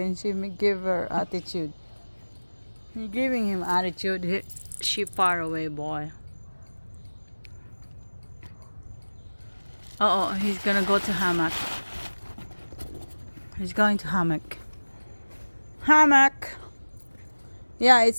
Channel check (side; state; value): both; inverted; correlation -1.00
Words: and she may give her attitude. You're giving him attitude. She far away, boy. Oh, he's gonna go to hammock. He's going to hammock. Hammock. Yeah,